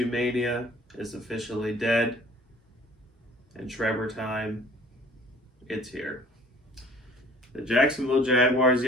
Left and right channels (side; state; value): both; normal; correlation 0.52